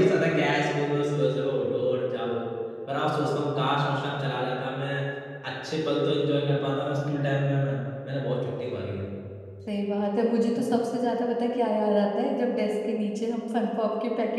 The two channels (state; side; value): identical; both; correlation 1.00